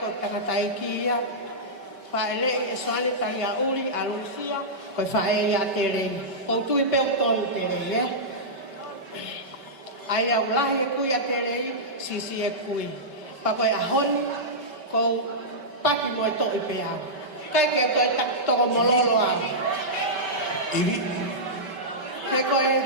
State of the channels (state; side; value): late; left; 5.2 ms